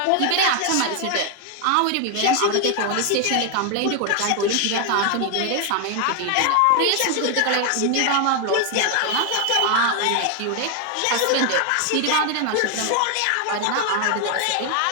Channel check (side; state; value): both; different; correlation 0.01